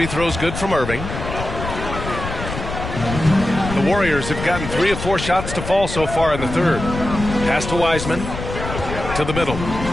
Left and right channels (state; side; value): noise; left; rumble, 7 dB below the sound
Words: throws good from Irving. The Warriors have gotten 3 of 4 shots to fall so far in the third. Pass to Wiseman. To the middle.